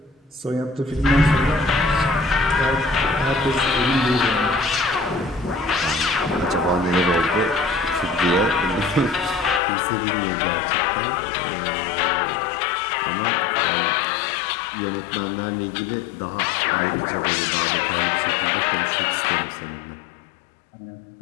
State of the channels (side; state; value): right; drops out; at 9.6 s